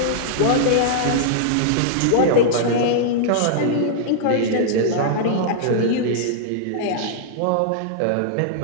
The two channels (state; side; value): different; both; correlation -0.01